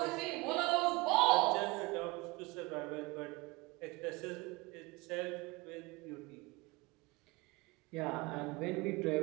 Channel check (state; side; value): quieter; left; 23.9 dB